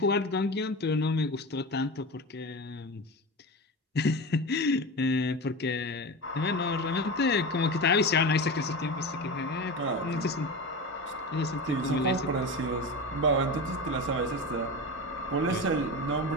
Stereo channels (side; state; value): both; normal; correlation 0.25